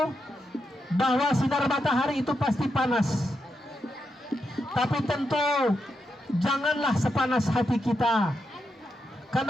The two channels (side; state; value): both; normal; correlation 0.84